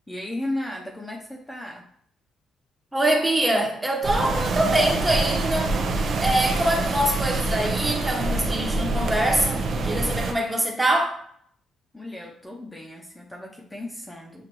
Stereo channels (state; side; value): normal; both; correlation 0.84